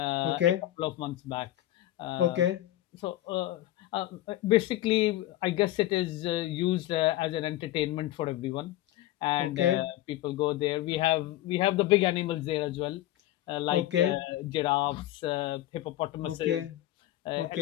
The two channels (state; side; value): quieter; right; 14.8 dB